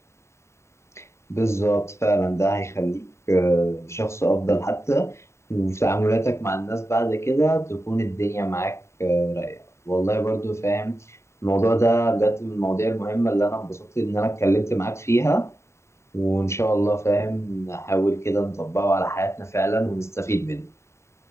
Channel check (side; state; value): right; late; 0.13 ms